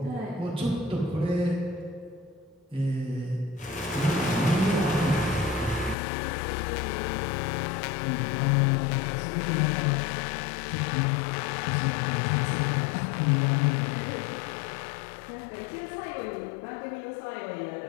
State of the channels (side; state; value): right; drops out; at 6.0 s